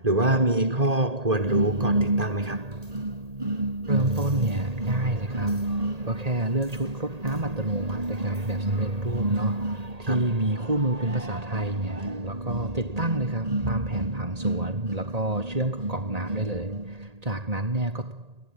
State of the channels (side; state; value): left; late; 1.8 ms